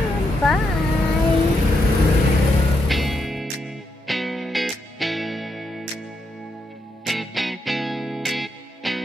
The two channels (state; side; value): normal; both; correlation 0.81